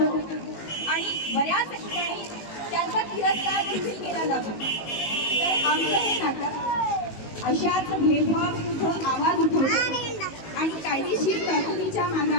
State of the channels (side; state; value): right; late; 19 ms